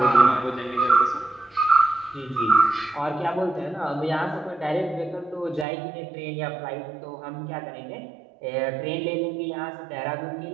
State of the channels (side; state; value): left; drops out; at 5.7 s